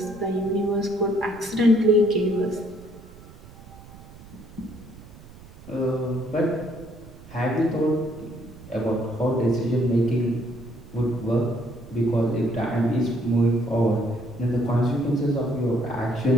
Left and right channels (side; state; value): right; noise; rumble, 19 dB below the sound